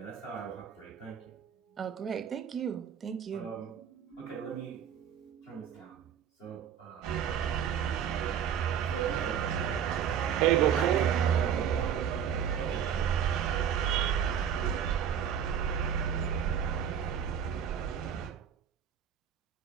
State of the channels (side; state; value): left; quieter; 8.6 dB